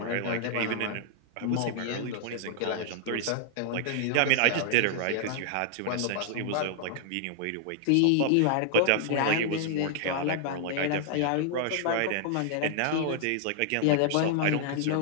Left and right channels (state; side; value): different; both; correlation 0.00